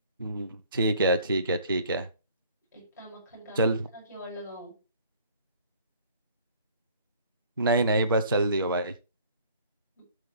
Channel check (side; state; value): both; inverted; correlation -0.54